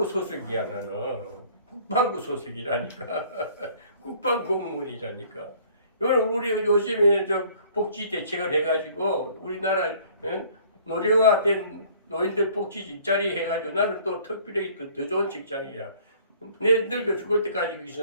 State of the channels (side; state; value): both; inverted; correlation -0.55